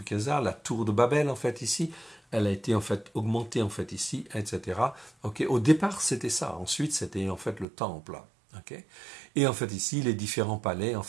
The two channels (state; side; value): drops out; left; at 7.7 s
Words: la tour de Babel, en fait, ici. Elle a été, en fait, augmentée, en fait, ici, etc. Au départ, c'était ça. Ensuite, c'était, en fait, le temple. Et en fait ici, les différents palais en